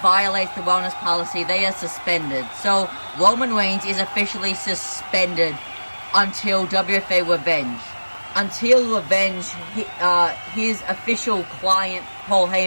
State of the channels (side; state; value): both; inverted; correlation -1.00